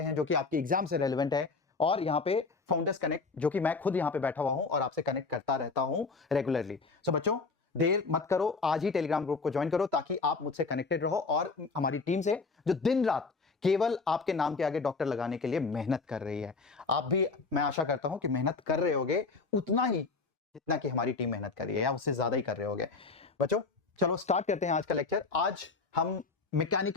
हैं जो कि आपके एग्जाम से रेलेवेंट है, और यहाँ पे फाउंडर्स कनेक्ट जो कि मैं खुद यहाँ पे बैठा हुआ हूँ और आपसे कनेक्ट करता रहता हूँ रेगुलरली। सो बच्चों देर मत करो, आज ही टेलीग्राम ग्रुप को ज्वाइन करो ताकि आप मुझसे कनेक्टेड रहो और हमारी टीम से जो दिन रात केवल आपके नाम के आगे डॉक्टर लगाने के लिए मेहनत कर रही है। आप भी, मैं आशा करता हूं कि मेहनत कर रहे होगे उतना ही जितना कि हमारी टीम मेहनत कर रही है, या उससे ज्यादा ही कर रहे होगे। बच्चों चलो स्टार्ट करते हैं आज का लेक्चर। आज हम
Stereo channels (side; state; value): right; quieter; 4.3 dB